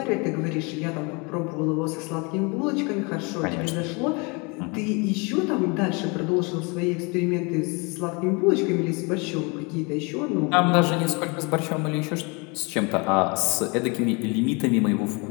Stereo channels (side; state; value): right; quieter; 29.8 dB